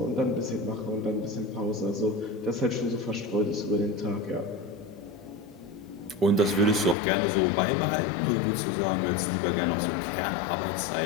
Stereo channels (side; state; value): right; drops out; at 7.0 s